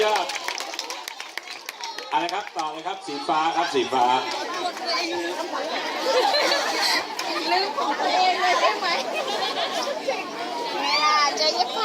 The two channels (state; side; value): identical; both; correlation 1.00